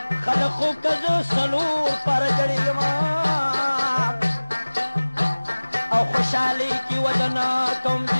خلق خو که زه څلور پاره جړېږم او خوشحالۍ کې ودنه کوم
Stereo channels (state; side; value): inverted; both; correlation -1.00